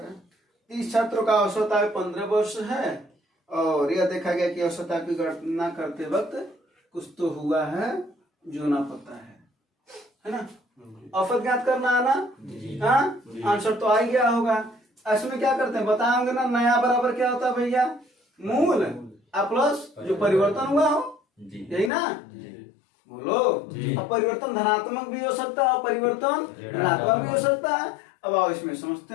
है। 30 छात्रों का औसत आयु 15 वर्ष है और यह देखा गया कि औसत आयु की गणना करते वक्त कुछ तो हुआ है जो ना पता है ना। औसत ज्ञात करना आना, हाँ आंसर तो आ ही गया होगा। ऐसे में क्या करते हैं बताएंगे ना, नया बराबर क्या होता है भैया, मूल प्लस जो परिवर्तन हुआ हो, यही ना। बोलो, अब परिवर्तन धनात्मक भी हो सकता है और परिवर्तन ऋणात्मक भी हो सकता है। अब आओ इसमें समझते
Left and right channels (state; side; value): drops out; right; at 21.9 s